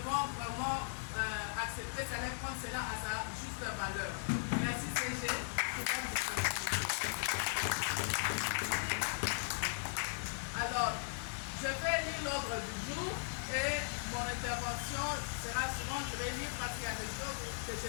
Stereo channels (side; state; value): right; silent; digital silence